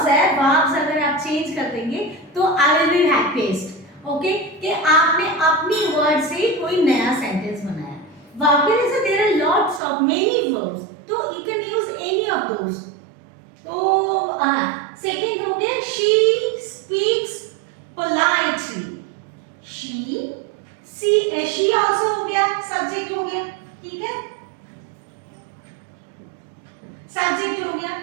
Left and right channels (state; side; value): drops out; left; at 9.8 s